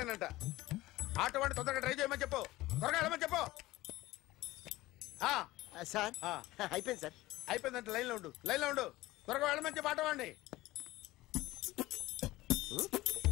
ఆటో వాడిని తొందరగా ట్రై చేయమని చెప్పు. త్వరగా వెళ్ళమని చెప్పు. సార్ అయిపోయింది సార్. అయిపోయిందంటే లైన్లో ఉండు, లైన్లో ఉండు. త్వరగా వెళ్ళమని చెప్పు ఆటో వాడిని.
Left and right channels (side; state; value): right; quieter; 18.0 dB